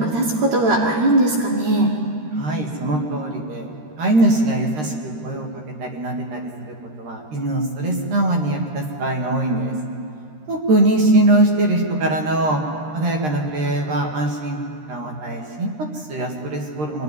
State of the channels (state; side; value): late; left; 13 ms